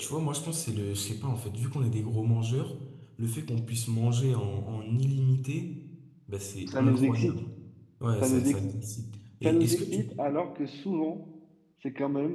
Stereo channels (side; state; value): both; identical; correlation 1.00